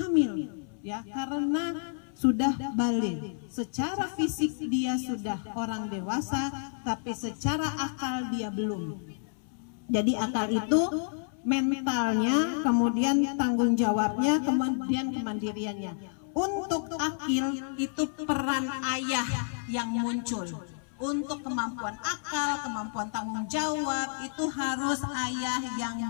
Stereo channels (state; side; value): silent; right; 58 dB below the other